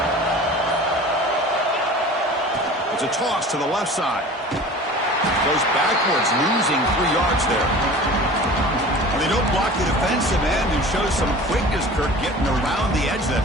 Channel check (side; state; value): both; normal; correlation 0.40